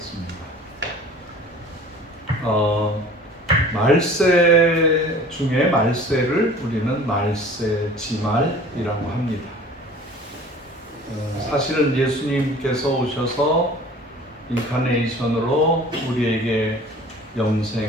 말세 중에 말세를 우리는 말세지말이라고 합니다. 사실은 예수님께서 오셔서 인카네이션으로 우리에게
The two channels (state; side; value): normal; both; correlation 0.46